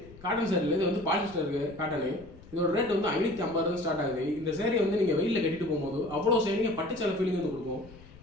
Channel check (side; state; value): left; noise; rumble, 20 dB below the sound